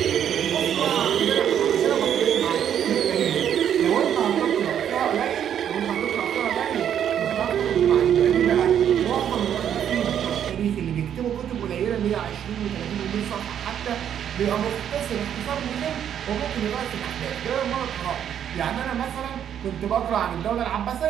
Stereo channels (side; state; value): left; quieter; 9.4 dB